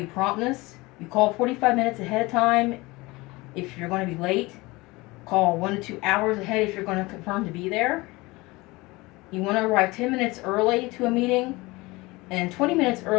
promptness. You call 45 minutes ahead of time if you're going to be late. Call 1 to 2 hours ahead if you're going to confirm to be there. You want to arrive 10 minutes early to a meeting, and 20 minutes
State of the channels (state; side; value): quieter; right; 22.4 dB